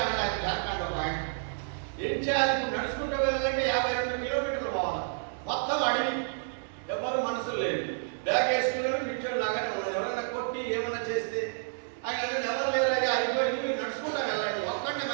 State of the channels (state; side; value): silent; left; digital silence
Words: ఆయన. జార్ఖండ్ ఒక ఆయన. ఏం చేయాలి? ఇప్పుడు నడుచుకుంటూ వెళ్ళాలంటే 52 కిలోమీటర్లు పోవాలి. మొత్తం అడవి, ఎవరు మనుషులు లేదు. బ్యాగ్ వేసుకున్నాడు, కూర్చొని లాగానే ఉన్నాడు. ఎవరైనా కొట్టి ఏమైనా చేస్తే ఆయన ఎవరు లేరు, అయ్యా అయిపోయింది, మీరు నడుచుకుంటా వెళ్ళండి, ఒక్కడే